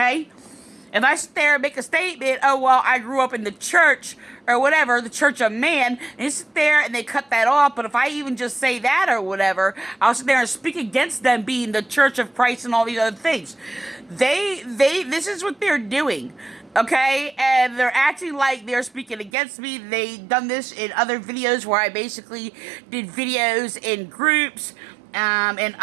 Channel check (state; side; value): drops out; left; at 19.3 s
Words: if I sit there and make a statement, oh well, I grew up in the church or whatever, the church of man, and they sit there and they cut that off. But if I even just say that or whatever, I'll sit there and speak against them being the church of Christ and all these other things. This is what they're doing. Okay, and they're acting like they're speaking against me. They've done this in other videos where I basically did videos in groups, and